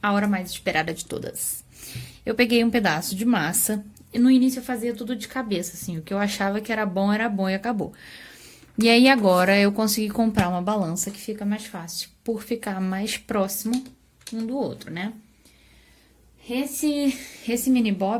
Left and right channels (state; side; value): identical; both; correlation 1.00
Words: a hora mais esperada de todas. Eu peguei um pedaço de massa e no início eu fazia tudo de cabeça, assim. O que eu achava que era bom e acabou. E aí agora eu consegui comprar uma balança que fica mais fácil, por ficar mais próximo um do outro, né? Esse mini